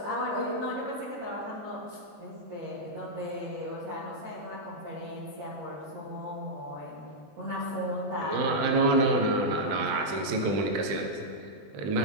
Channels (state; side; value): late; left; 20 ms